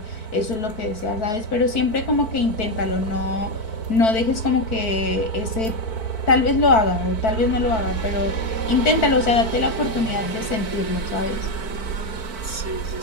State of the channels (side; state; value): right; late; 4.5 ms